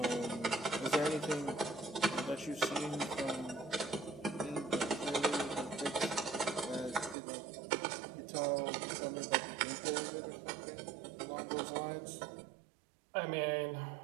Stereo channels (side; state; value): left; drops out; at 7.2 s